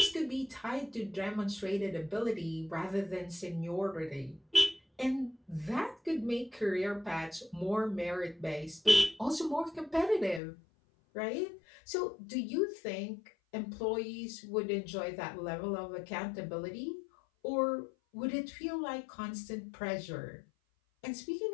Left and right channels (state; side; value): drops out; right; at 10.4 s